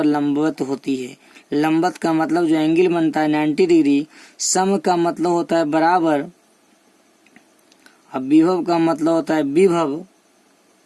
लंबवत होती है। लंबवत का मतलब जो एंगल बनता है 90 डिग्री। सम का मतलब होता है बराबर, अब विभव का मतलब होता है विभव,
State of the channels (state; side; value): identical; both; correlation 1.00